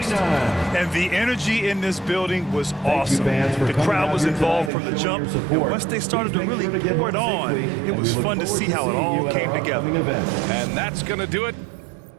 And the energy in this building was awesome. fans, for The coming crowd out was here involved tonight from and the showing jump. your And support. once they started to Please make really sure to get pour it home on, safely, it and was we look fun to forward see how it seeing all you at came our together. upcoming event. And that's going to do it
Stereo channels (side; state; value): left; drops out; at 4.7 s